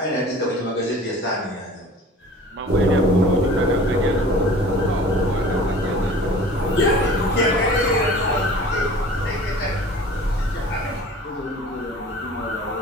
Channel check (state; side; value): normal; both; correlation 0.44